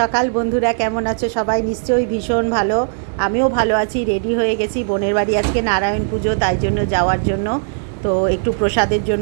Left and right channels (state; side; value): silent; left; 64 dB below the other